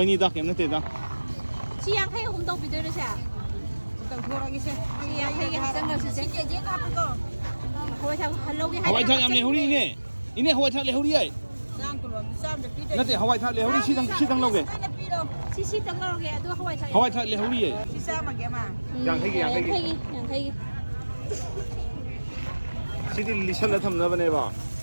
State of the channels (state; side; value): inverted; both; correlation -1.00